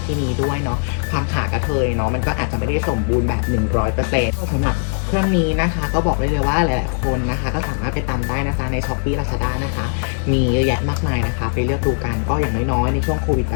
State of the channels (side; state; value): right; silent; 61 dB below the other